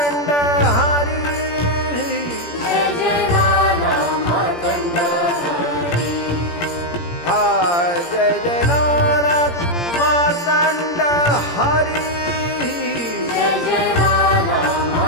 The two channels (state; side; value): late; right; 17 ms